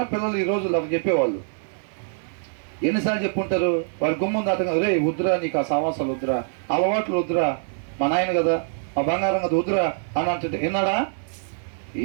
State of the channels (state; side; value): silent; left; digital silence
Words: పిల్లలు ఈ రోజులు అవి చెప్పేవాళ్ళు. ఎన్నిసార్లు చెప్పుంటారు? వారి గుమ్మంది అతను, రే వద్దురా, నీకు ఆ సమాసాలు వద్దురా, అలవాట్లు వద్దురా, మా నాయన కదా, ఆ బంగారం కదా వద్దురా అని అంటే విన్నాడా?